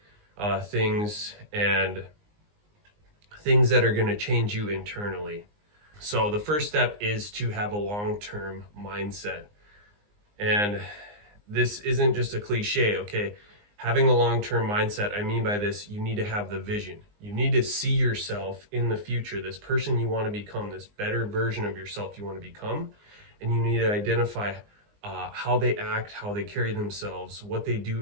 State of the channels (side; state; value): left; late; 19 ms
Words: things, and things that are going to change you internally. So the first step is to have a long-term mindset. And this isn't just a cliche, okay? Having a long-term mindset, I mean by this, you need to have the vision. You need to see yourself in the future, this person you want to become, this better version of yourself you want to become. And you need to identify how they act, how they carry themselves, what they